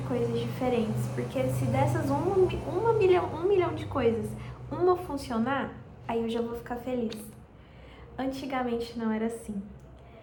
diferentes, porque se dessas 1 milhão de coisas, uma funcionar, aí eu já vou ficar feliz. Antigamente não era assim.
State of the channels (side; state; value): both; identical; correlation 1.00